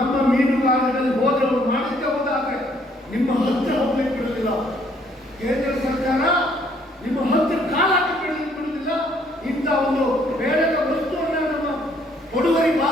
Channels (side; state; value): both; normal; correlation 0.65